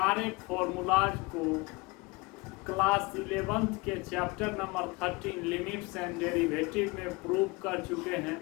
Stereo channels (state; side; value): quieter; right; 25.4 dB